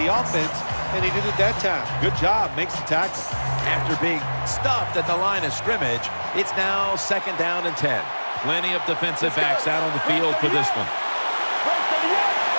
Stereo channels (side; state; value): both; inverted; correlation -1.00